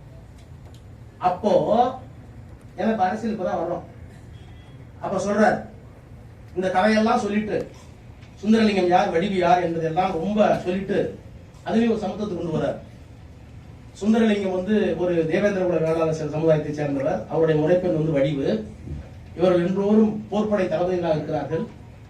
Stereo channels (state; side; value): identical; both; correlation 1.00